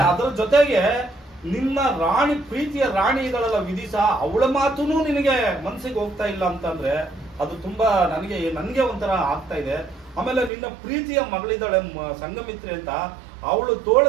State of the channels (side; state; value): left; drops out; at 10.5 s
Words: ಅದರ ಜೊತೆಗೆ ನಿನ್ನ ರಾಣಿ, ಪ್ರೀತಿಯ ರಾಣಿಗಳೆಲ್ಲ ವಿಧಿಸ ಅವಳ ಮಾತುನೂ ನಿನಗೆ ಮನಸ್ಸಿಗೆ ಹೋಗ್ತಾ ಇಲ್ಲ ಅಂತಂದ್ರೆ ಅದು ತುಂಬಾ ನನಗೆ ಒಂಥರ ಆಗ್ತಾ ಇದೆ. ಆಮೇಲೆ ನಿನ್ನ ಪ್ರೀತಿಯ ಮಗಳಿದ್ದಾಳೆ ಸಂಗಮಿತ್ರಿ ಅಂತ, ಅವಳು ತೋಳ